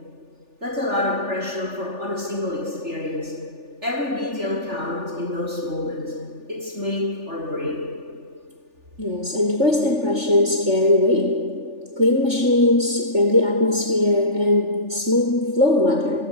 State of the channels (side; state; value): left; late; 3.4 ms